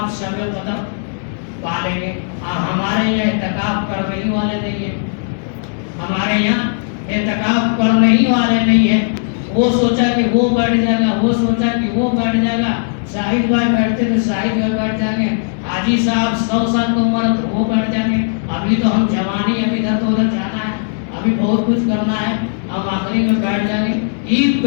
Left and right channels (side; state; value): right; silent; digital silence